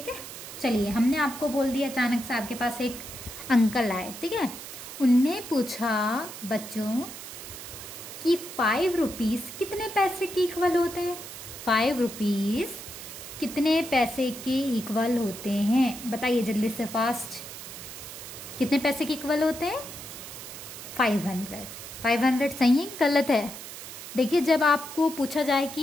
है, चलिए हमने आपको बोल दिया, अचानक से आपके पास एक अंकल आए, ठीक है। उनने पूछा बच्चों कि 5 रुपीज़ कितने पैसे के इक्वल होते हैं। 5 रुपीज़ कितने पैसे के इक्वल होते हैं, बताइए जल्दी से, फास्ट। कितने पैसे के इक्वल होते हैं? 500। 500 सही है कि गलत है? देखिए, जब आपको पूछा जाए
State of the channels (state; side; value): noise; right; hiss, 11 dB below the sound